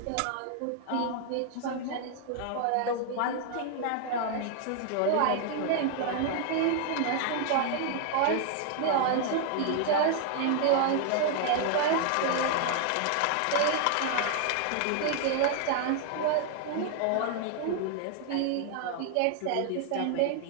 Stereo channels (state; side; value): different; both; correlation 0.00